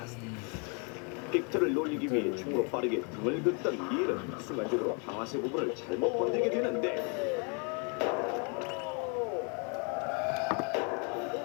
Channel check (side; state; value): right; quieter; 36.1 dB